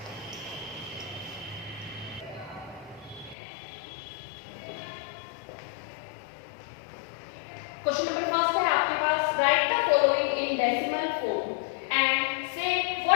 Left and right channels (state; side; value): drops out; right; at 3.4 s